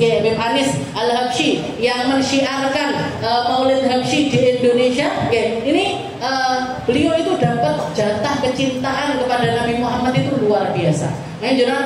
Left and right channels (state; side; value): identical; both; correlation 1.00